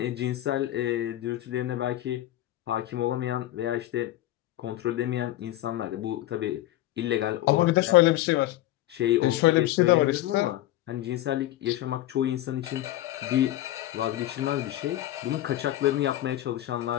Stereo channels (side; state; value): right; quieter; 14.8 dB